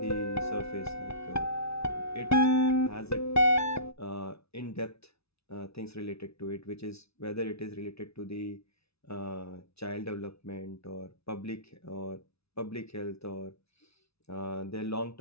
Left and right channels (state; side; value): late; right; 0.79 ms